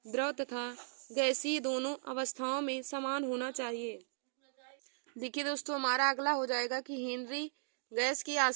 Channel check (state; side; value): silent; left; digital silence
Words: द्रव तथा गैसीय दोनों अवस्थाओं में समान होना चाहिए। देखिए दोस्तों, हमारा अगला हो जाएगा कि हेनरी गैस की